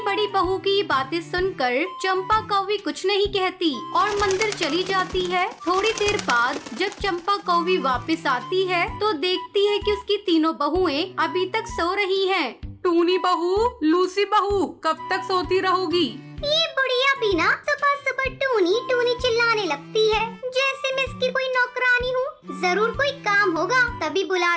बड़ी बहू की ये बातें सुनकर चंपा कौवी कुछ नहीं कहती और मंदिर चली जाती है। थोड़ी देर बाद जब चंपा कौवी वापस आती है तो देखती है कि उसकी तीनों बहुएं अभी तक सो रही हैं। टूनी बहू, लूसी बहू, कब तक सोती रहोगी? ये बुढ़िया भी ना सुबह सुबह टूनी टूनी चिल्लाने लगती है, जैसे मैं इसकी कोई नौकरानी हूँ। जरूर कोई काम होगा तभी बुला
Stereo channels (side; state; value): both; identical; correlation 1.00